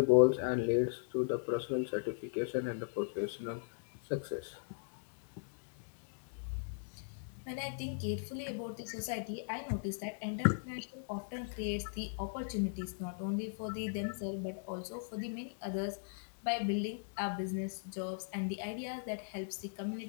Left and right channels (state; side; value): silent; right; digital silence